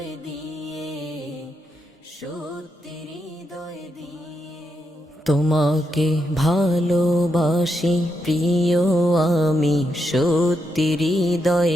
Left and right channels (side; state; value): both; normal; correlation 0.82